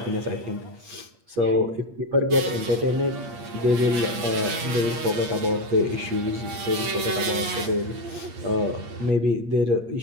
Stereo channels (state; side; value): late; left; 8.8 ms